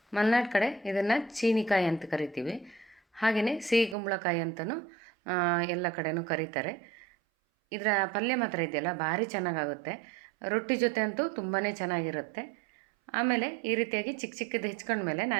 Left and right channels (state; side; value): drops out; left; at 4.0 s